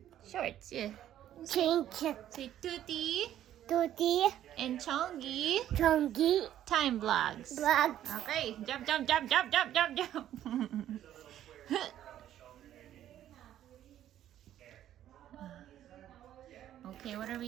Shorts, yeah. Change. Say Tutti Tutti. and Chongi Chongi. time vlogs. Black. Okay, jump, jump, jump, jump, jump, jump, jump. Okay, what are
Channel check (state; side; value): quieter; left; 11.7 dB